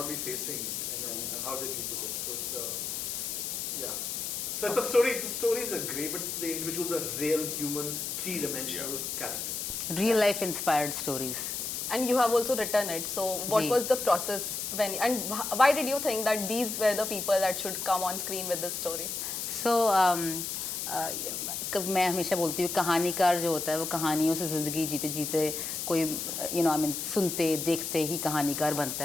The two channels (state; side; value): noise; left; hiss, 3 dB below the sound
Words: be facing and how they deal with it. So it's So it's a story. The stories are great, but the individuals are real, human, three-dimensional characters. Real life inspired stories. And you have also written it. So what was the process and why did you think that these were the people that should come on screen with this story? So मैं हमेशा बोलती हूँ कहानीकार जो होता है वो कहानियों से ज़िंदगी जीते जीते कोई सुनते देखते ही कहानीकार बनता